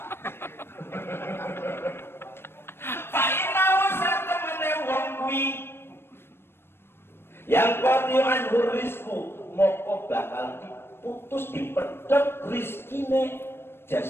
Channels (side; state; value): right; late; 0.11 ms